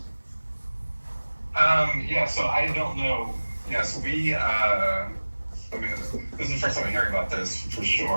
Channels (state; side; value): inverted; both; correlation -1.00